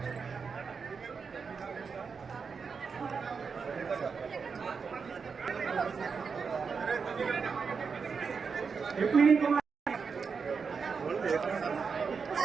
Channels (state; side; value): quieter; left; 5.5 dB